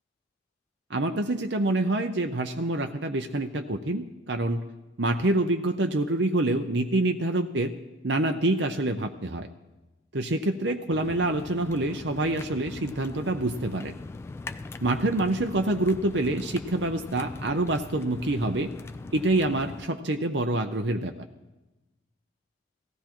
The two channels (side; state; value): both; normal; correlation 0.40